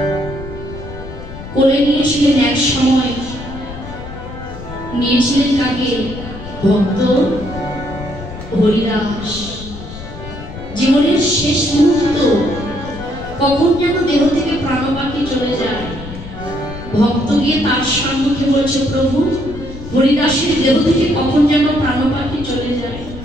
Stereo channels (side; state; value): left; noise; rumble, 12 dB below the sound